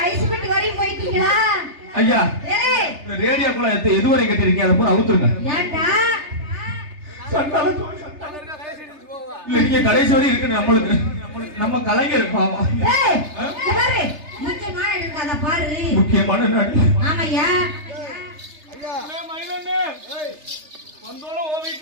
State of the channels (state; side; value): late; left; 3.3 ms